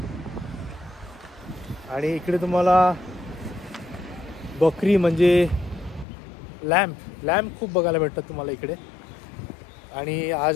आणि इकडे तुम्हाला बकरी म्हणजे लॅम्प खूप बघायला भेटतात तुम्हाला इकडे. आणि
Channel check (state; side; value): drops out; right; at 6.1 s